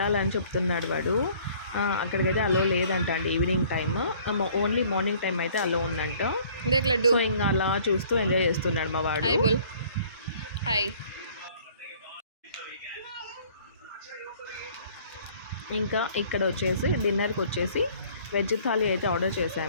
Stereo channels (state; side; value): inverted; both; correlation -0.56